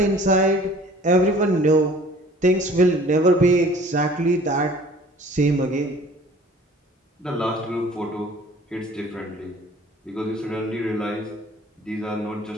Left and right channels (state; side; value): normal; both; correlation 0.50